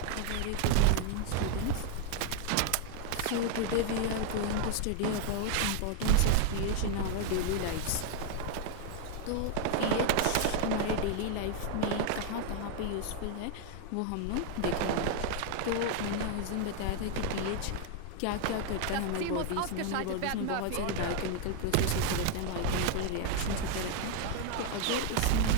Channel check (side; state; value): both; different; correlation 0.01